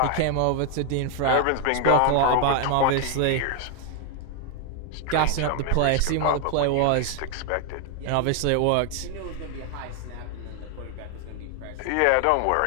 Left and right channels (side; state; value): both; different; correlation 0.00